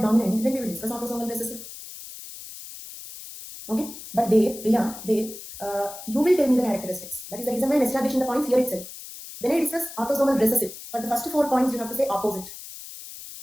dominant, then we will discuss autosomal recessive. Okay? But you will tell me the characteristics. That is the reason why I am establishing the points here itself. When I discuss autosomal recessive, for the first 4 points you have to say opposite.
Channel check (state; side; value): noise; left; hiss, 13 dB below the sound